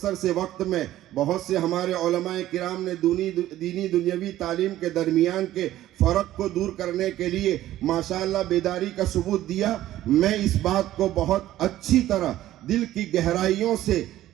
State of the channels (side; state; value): left; quieter; 13.9 dB